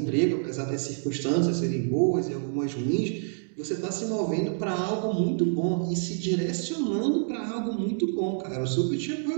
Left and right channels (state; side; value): silent; left; digital silence